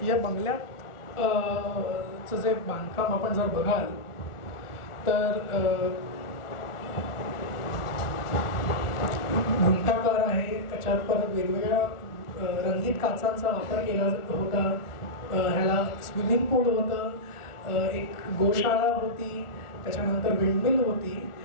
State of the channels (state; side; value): late; right; 1.4 ms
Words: या बंगल्यात चं जे बांधकाम आपण जर बघाल तर घुमटाकार आहे, त्याच्यात परत वेगवेगळ्या रंगीत काचांचा वापर केला होता. ह्याला स्विमिंग पूल होतं, एक गोशाळा होती, त्याच्यानंतर विंडमिल होती,